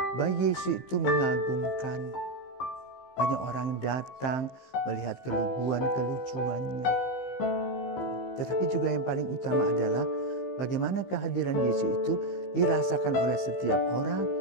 Bayi Yesus itu mengagumkan. Banyak orang datang melihat keluguan, kelucuannya. Tetapi juga yang paling utama adalah bagaimana kehadiran Yesus itu dirasakan oleh setiap orang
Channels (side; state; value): right; late; 15 ms